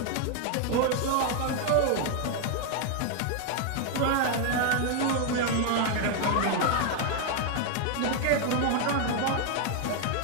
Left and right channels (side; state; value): both; different; correlation 0.00